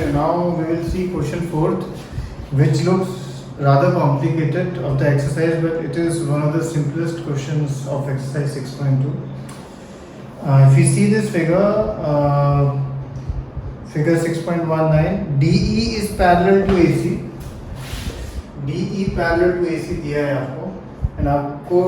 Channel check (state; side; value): identical; both; correlation 1.00